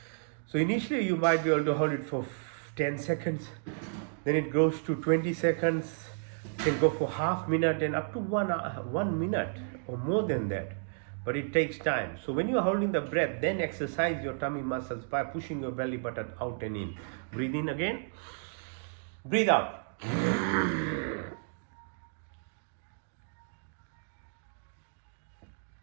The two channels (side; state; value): left; silent; digital silence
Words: So initially you might be able to hold it for 10 seconds, then it goes to 20 seconds, can go for half minute and up to 1 minute or more than that. but it takes time. So when you are holding the breath, then exercise your tummy muscles by pushing your belly button out and in. Breathe in again. Breathe out.